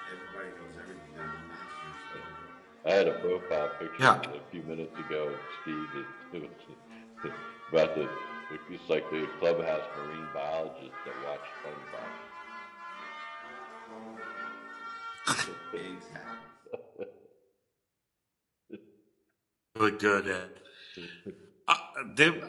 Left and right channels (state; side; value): identical; both; correlation 1.00